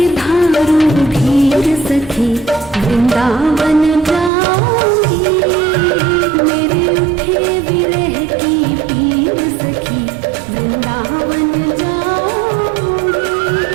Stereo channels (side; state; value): left; drops out; at 4.3 s